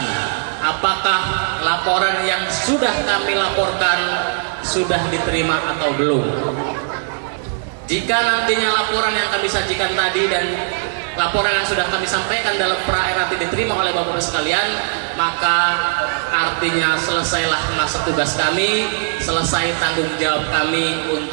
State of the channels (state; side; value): silent; left; digital silence